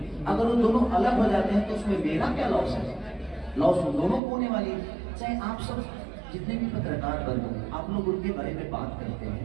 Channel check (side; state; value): left; drops out; at 4.2 s